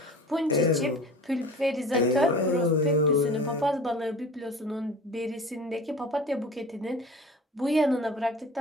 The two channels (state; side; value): normal; both; correlation 0.39